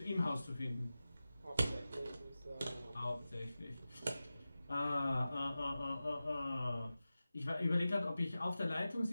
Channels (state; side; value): inverted; both; correlation -0.94